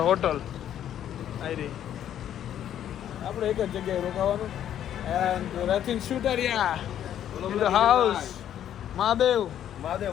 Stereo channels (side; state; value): right; quieter; 10.6 dB